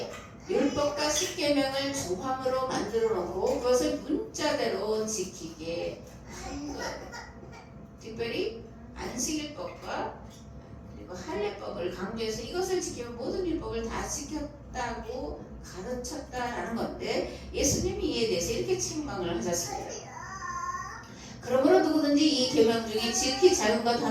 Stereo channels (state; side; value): identical; both; correlation 1.00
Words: 율법과 십계명을 조항으로 만들어 놓고 그것을 문자대로 지키게 한 거예요. 특별히 안식일법과 그리고 할례법을 강조해서 이것을 지키면 모든 율법을 다 지켰다고 가르쳤다라는 건데 예수님이 이에 대해서 이렇게 책망을 하셨습니다. 그러므로 누구든지 이 계명 중에 지극히 작은 것